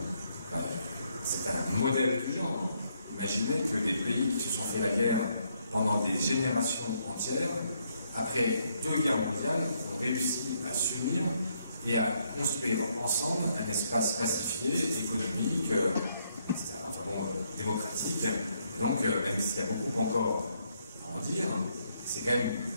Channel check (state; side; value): inverted; both; correlation -0.74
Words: Enfin, c'est un modèle du genre. Imaginez que des pays qui se sont fait la guerre pendant des générations entières, après 2 guerres mondiales, ont réussi à s'unir et à construire ensemble un espace pacifié, économique, etc., enfin bon, démocratique. Et donc, même s'il y a beaucoup encore à en dire, c'est quand même